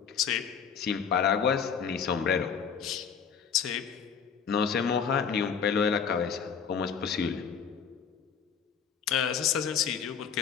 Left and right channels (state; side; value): quieter; right; 6.9 dB